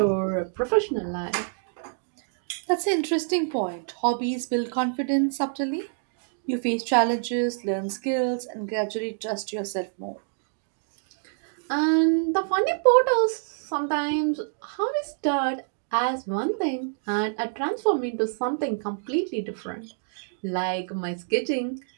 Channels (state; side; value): silent; left; digital silence